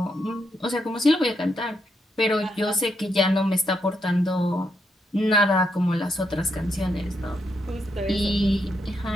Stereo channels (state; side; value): normal; both; correlation 0.79